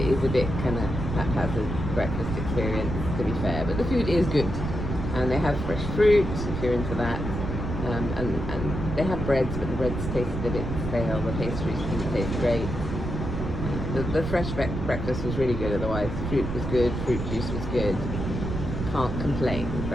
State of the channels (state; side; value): noise; right; rumble, 4 dB below the sound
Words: is a bit kind of haphazard breakfast experience, to be fair. But the food is good, and they have fresh fruit if you're into that. And they have breads, but the breads tasted a bit stale. The pastries didn't taste great. The fresh breakfast was really good otherwise. Fruit was good, fruit juice was good. Can't complain,